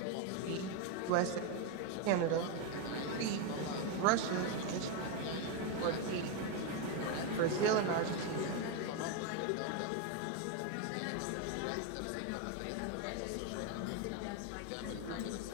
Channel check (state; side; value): different; both; correlation 0.02